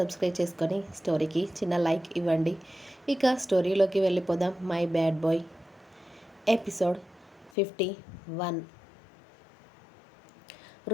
చేసుకొని స్టోరీకి చిన్న లైక్ ఇవ్వండి. ఇక స్టోరీలోకి వెళ్ళిపోదాం. My bad boy episode 51.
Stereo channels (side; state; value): right; drops out; at 7.5 s